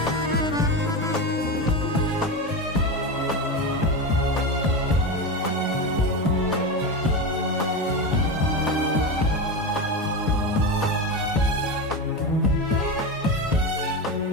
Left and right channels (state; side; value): normal; both; correlation 0.18